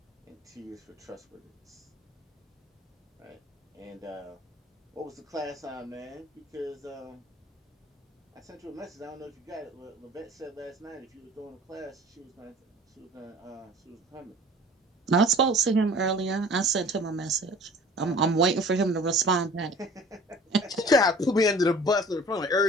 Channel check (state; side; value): normal; both; correlation 0.47